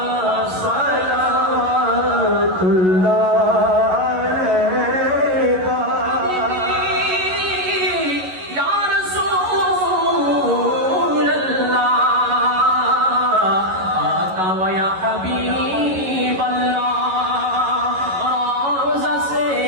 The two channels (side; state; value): left; late; 11 ms